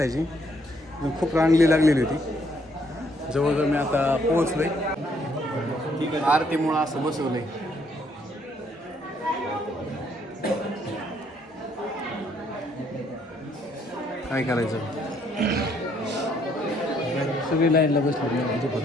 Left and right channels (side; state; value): both; normal; correlation 0.69